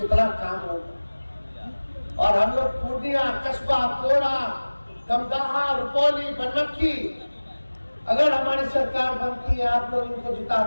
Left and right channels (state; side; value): inverted; both; correlation -1.00